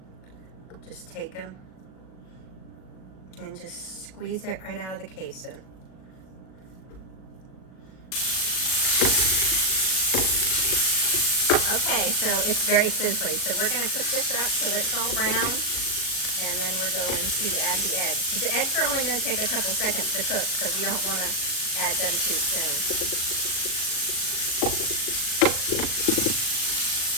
just take them and just squeeze it right out of the casing. Okay, so it's very sizzly. So we're going to cook this up till it's all brown, and then we're going to add the eggs. The eggs are only going to take a couple seconds to cook, so we don't want to add them too soon.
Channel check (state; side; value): late; right; 38 ms